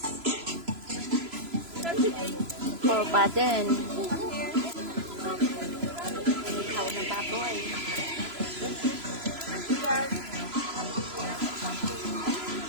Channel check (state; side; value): late; left; 3.0 ms